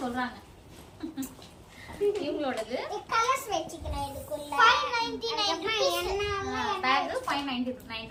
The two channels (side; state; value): both; identical; correlation 1.00